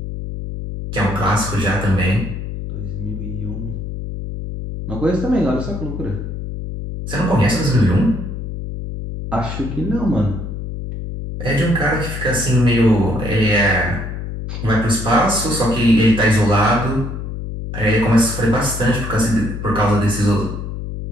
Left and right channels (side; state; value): left; noise; hum, 7 dB below the sound